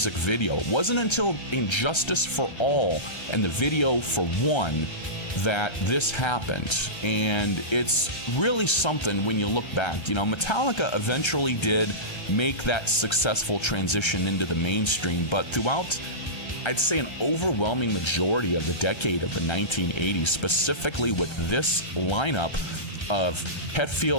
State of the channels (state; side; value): late; right; 1.3 ms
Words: video. It wasn't until Injustice for All and the video for One that this happened. And it's really something when you look back. Metallica eventually did make that successful transition into the mainstream, but throughout, I'd say, an overwhelming majority of the decade of the 1980s, specifically with this lineup of